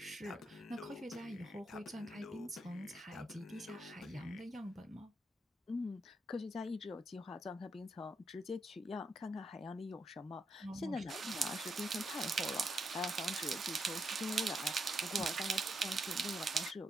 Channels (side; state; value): both; normal; correlation 0.81